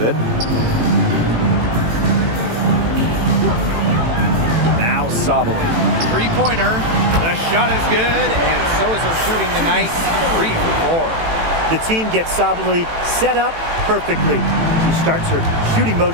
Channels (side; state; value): left; late; 18 ms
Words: it. Now Sabali. 3-pointer. The shot is good, and so is her shooting tonight. 3 for 4. The team gets Sabali set up perfectly. She starts her shooting